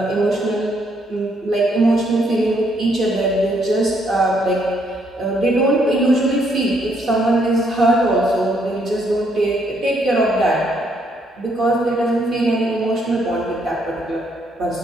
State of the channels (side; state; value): both; normal; correlation 0.72